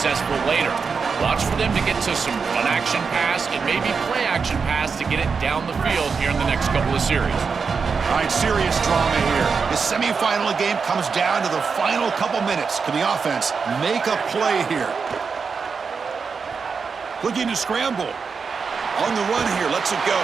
later. Watch for them to get to some run-action pass and maybe play-action pass to get it down the field here in the next couple of series. All right, serious drama here. The semifinal game comes down to the final couple minutes. Can the offense make a play here? Looking to scramble. On the run here, lets it go.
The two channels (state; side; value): quieter; left; 5.4 dB